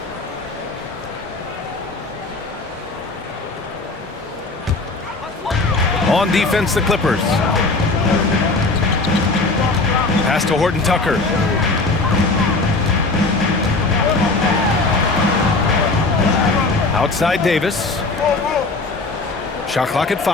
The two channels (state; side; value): quieter; right; 3.4 dB